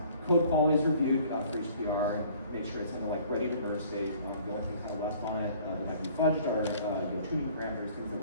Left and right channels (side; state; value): both; inverted; correlation -0.54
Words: Code quality is reviewed for each PR, and make sure it's in the ready to merge state. The only things kind of left on it that might be fudged are tuning parameters, things that